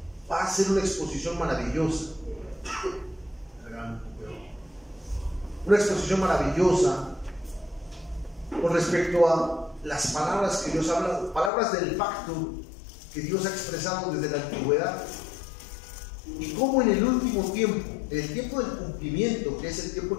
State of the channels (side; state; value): right; drops out; at 11.5 s